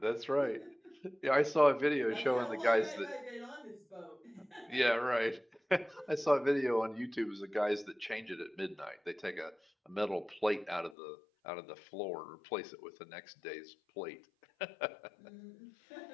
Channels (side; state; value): right; drops out; at 11.0 s